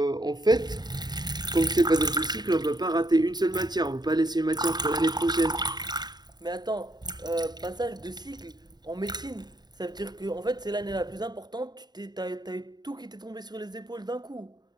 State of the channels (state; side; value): late; left; 0.20 ms